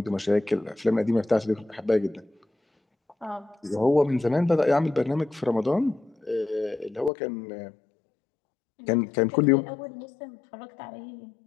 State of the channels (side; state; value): right; drops out; at 7.1 s